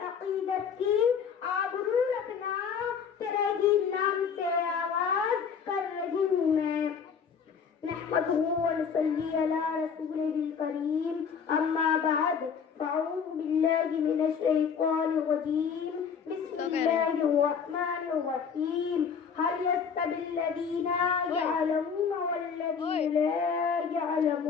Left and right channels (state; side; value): quieter; right; 6.6 dB